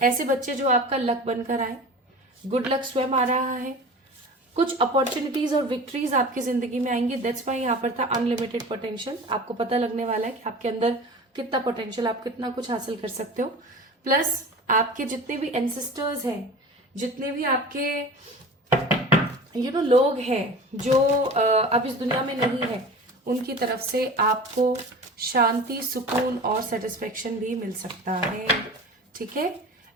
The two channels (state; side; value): normal; both; correlation 0.37